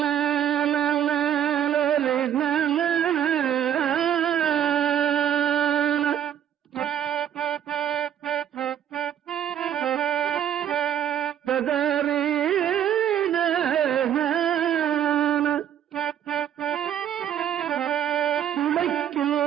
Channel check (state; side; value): quieter; left; 10.0 dB